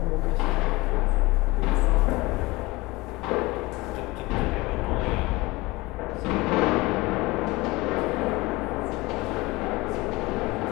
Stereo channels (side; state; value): right; quieter; 22.0 dB